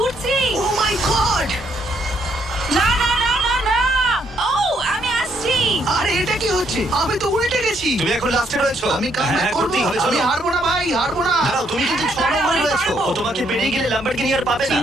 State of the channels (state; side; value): normal; both; correlation 0.72